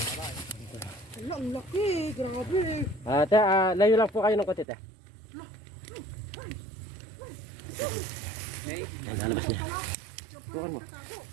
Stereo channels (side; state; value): left; drops out; at 4.7 s